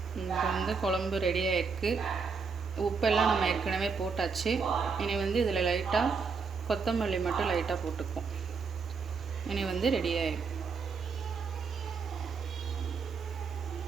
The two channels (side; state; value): left; quieter; 5.2 dB